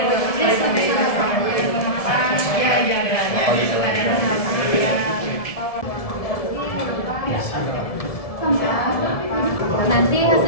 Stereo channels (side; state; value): right; late; 1.7 ms